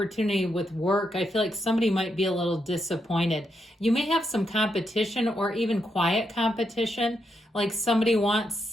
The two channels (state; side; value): normal; both; correlation 0.81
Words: with work, I feel like somebody might be a little disappointed. You may have some competition or even quiet competition. Like somebody